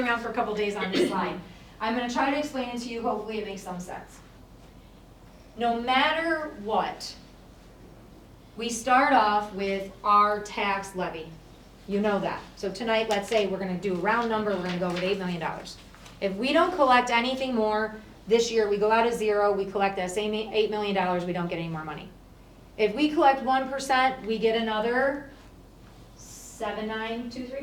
round for a couple days on this slide. I'm going to try to explain it to you. Hopefully it makes some sense. No matter what, we start off with our tax levy. You know that. So tonight, let's say we're going to do a round number. We're going to go with $8 million. If we don't collect anything more this year, we go out of zero. We collect that same $8 million. We don't get any more money. If we collect 1%, we get another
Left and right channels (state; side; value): identical; both; correlation 1.00